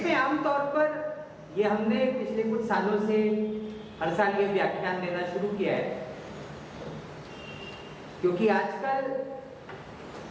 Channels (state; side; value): identical; both; correlation 1.00